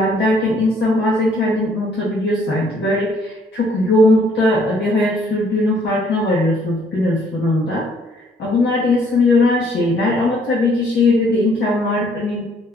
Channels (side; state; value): both; normal; correlation 0.64